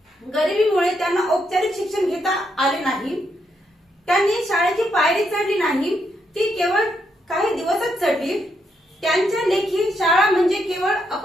गरिबीमुळे त्यांना औपचारिक शिक्षण घेता आले नाही। त्यांनी शाळेची पायरी चढली नाही, ती केवळ काही दिवसच चढली। त्यांच्या लेखी शाळा म्हणजे केवळ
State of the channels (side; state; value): both; normal; correlation 0.79